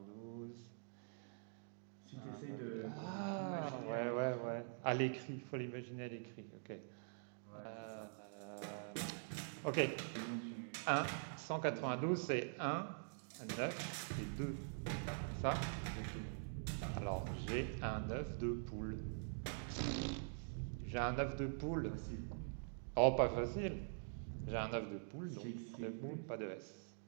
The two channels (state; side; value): silent; left; digital silence